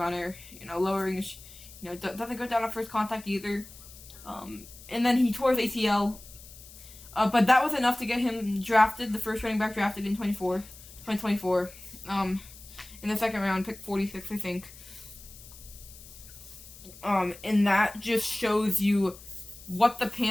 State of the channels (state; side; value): noise; left; hiss, 19 dB below the sound